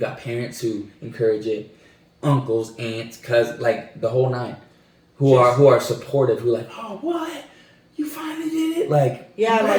parents who encourage it, uncles, aunts, cousins, like the whole nine, who are supportive, who are like, oh, what, you finally did it, like,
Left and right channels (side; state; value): both; identical; correlation 1.00